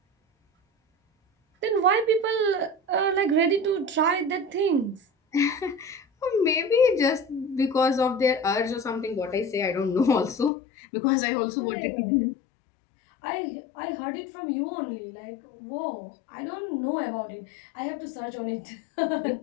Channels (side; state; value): right; drops out; at 10.5 s